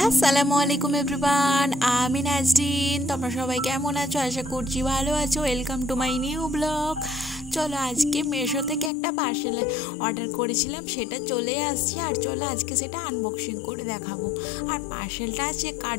আসসালামু আলাইকুম এভরিওয়ান, আমি নাজরিন। তোমরা সবাই কেমন আছো? আশা করছি ভালো আছো। Welcome to my new blog. চলো, আজকে মেশো থেকে একটা পার্সেল অর্ডার করেছিলাম, সেটা চলে আসছে। আর চলো আজকে সেটা আনবক্সিং করে দেখাবো। আর পার্সেলটা আছে কার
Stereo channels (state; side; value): drops out; right; at 8.9 s